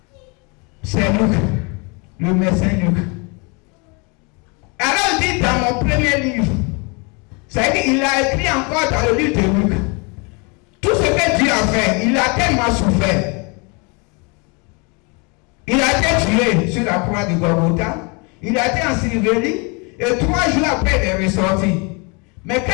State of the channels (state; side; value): quieter; right; 31.4 dB